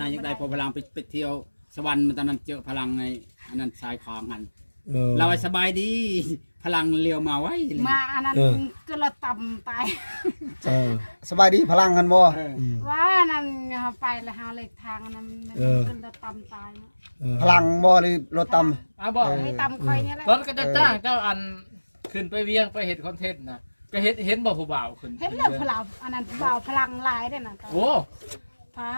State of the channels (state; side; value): inverted; both; correlation -1.00